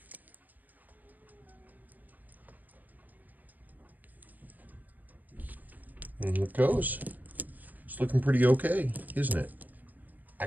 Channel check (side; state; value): left; late; 0.084 ms